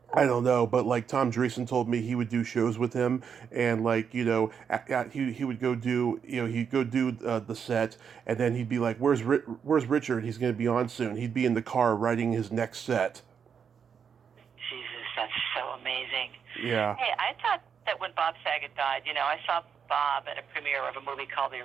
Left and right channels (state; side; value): quieter; left; 7.0 dB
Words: I don't know, but Tom Dreesen told me he would do shows with him, and he would go do he'd go do the set, and then he'd be like, "Where's Richard? He's going to be on soon." He'd be in the car writing his next set. Jesus, that's so amazing. Yeah. Hey, I thought that when Bob Saget died, I saw Bob at a premiere of a movie called The